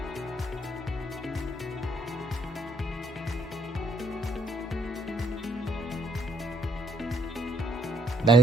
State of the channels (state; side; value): normal; both; correlation 0.68